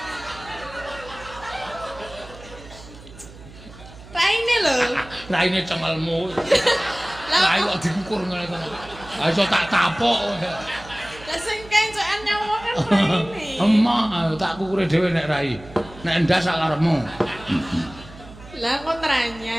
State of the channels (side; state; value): right; noise; hum, 18 dB below the sound